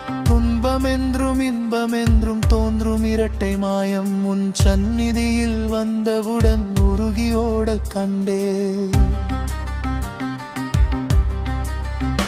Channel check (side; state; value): both; identical; correlation 1.00